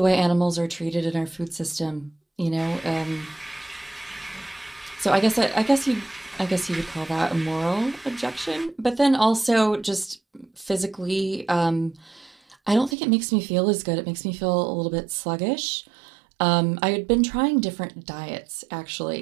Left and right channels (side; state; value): left; drops out; at 13.0 s